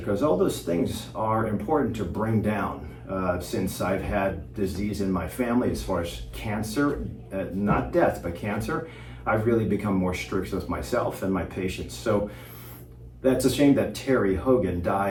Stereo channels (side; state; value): both; identical; correlation 1.00